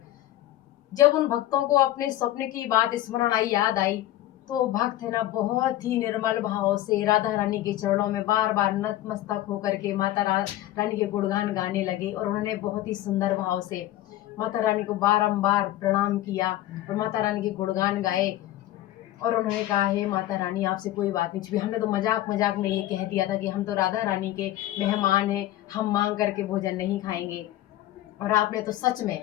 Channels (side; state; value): right; quieter; 14.5 dB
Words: जब उन भक्तों को अपने स्वप्न की बात स्मरण आई, याद आई, तो भक्त है ना बहुत ही निर्मल भाव से राधा रानी के चरणों में बार बार नतमस्तक होकर के रानी के गुणगान गाने लगे। और उन्होंने बहुत ही सुंदर भाव से माता रानी को बारंबार प्रणाम किया और माता रानी के गुणगान गाए। और उन्होंने कहा, हे माता रानी, आपसे कोई बात नहीं छुपी। हमने तो मजाक मजाक में ये कह दिया था कि हम तो राधा रानी के मेहमान हैं, हम मांग करके भोजन नहीं खाएंगे। और आपने तो सच में